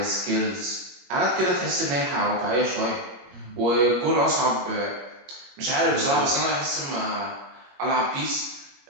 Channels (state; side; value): late; left; 21 ms